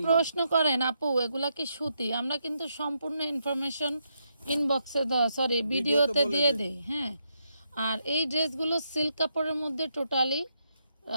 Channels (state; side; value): inverted; both; correlation -0.80